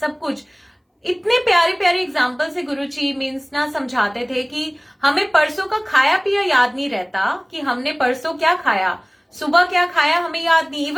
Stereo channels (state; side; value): identical; both; correlation 1.00